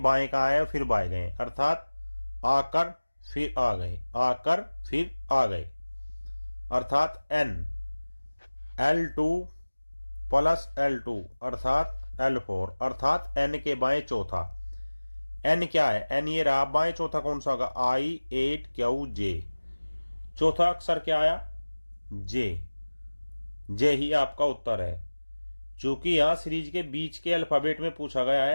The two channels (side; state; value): both; inverted; correlation -1.00